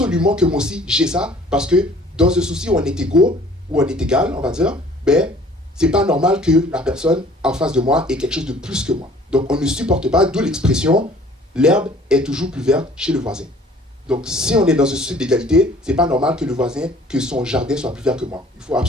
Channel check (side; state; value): both; normal; correlation 0.53